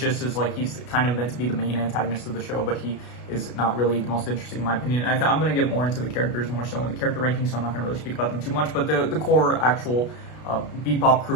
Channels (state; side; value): late; right; 33 ms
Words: like, he's kind of meant to be the main antagonist of the show, but he is not really the most interesting in my opinion. I'm going to get more into the characters more so in the character ranking, so I'm not going to really speak about them too much. But the core actual Bebop